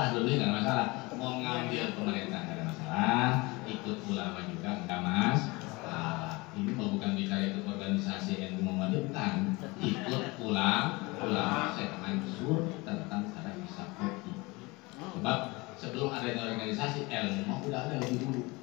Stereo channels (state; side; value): quieter; right; 24.3 dB